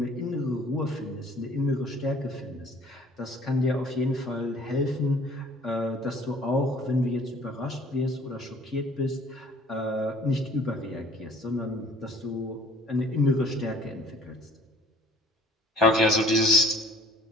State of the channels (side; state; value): both; normal; correlation 0.54